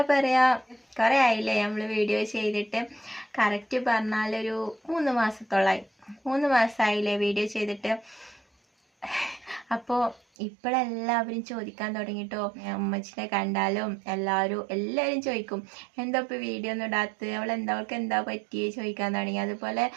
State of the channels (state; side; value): drops out; left; at 10.2 s